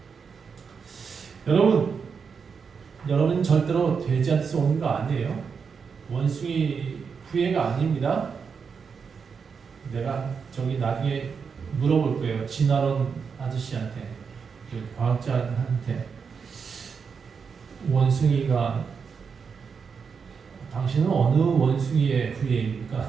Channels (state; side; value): quieter; left; 5.9 dB